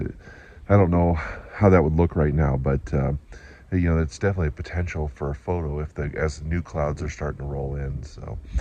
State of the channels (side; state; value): both; identical; correlation 1.00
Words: I don't know how that would look right now, but you know, it's definitely a potential for a photo as the new clouds are starting to roll in. So